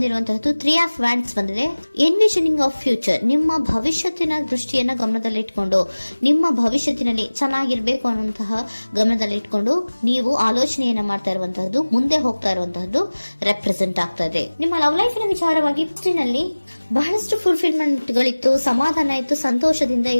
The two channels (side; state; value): both; inverted; correlation -1.00